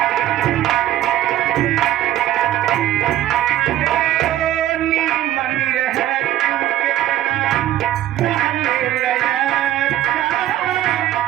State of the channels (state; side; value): quieter; left; 13.1 dB